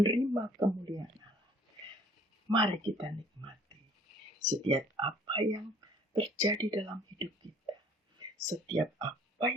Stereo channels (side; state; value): both; normal; correlation 0.55